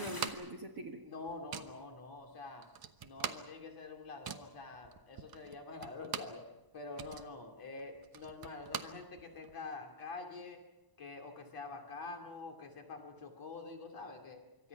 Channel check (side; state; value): left; late; 1.0 ms